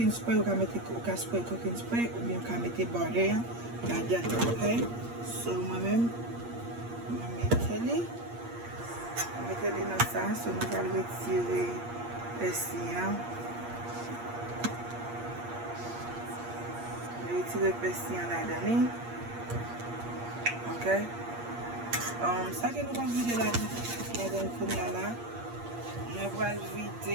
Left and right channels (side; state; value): left; late; 8.5 ms